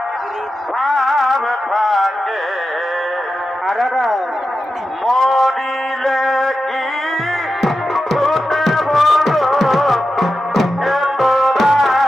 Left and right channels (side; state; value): both; normal; correlation 0.91